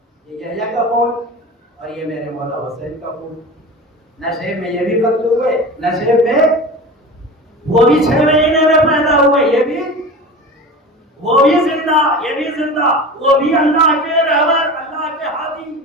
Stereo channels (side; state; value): both; normal; correlation 0.33